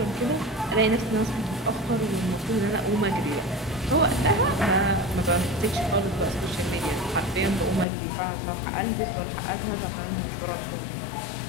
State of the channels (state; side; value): drops out; right; at 7.9 s